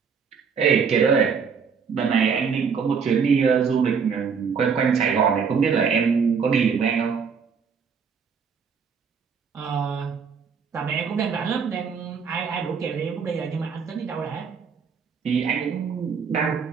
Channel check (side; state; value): left; quieter; 6.1 dB